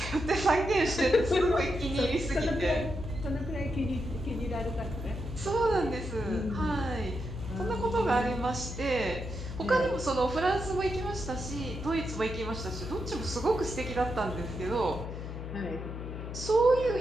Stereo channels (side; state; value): left; noise; hum, 8 dB below the sound